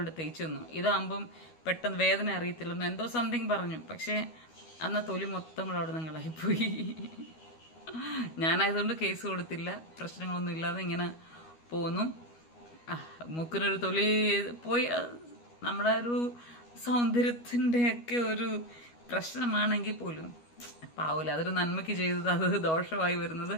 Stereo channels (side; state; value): right; late; 12 ms